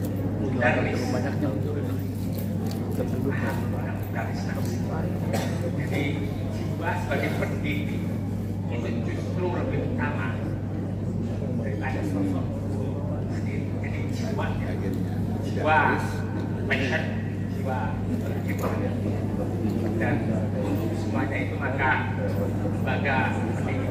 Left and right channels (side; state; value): both; identical; correlation 1.00